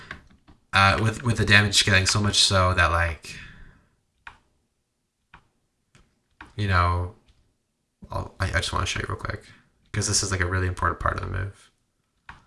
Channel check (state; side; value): identical; both; correlation 1.00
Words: with the damage scaling so much so that like I just want to show you real quick because this is like a really important part of the move.